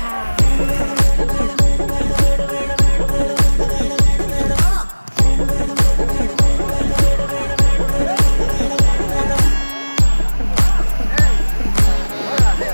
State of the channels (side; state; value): both; inverted; correlation -1.00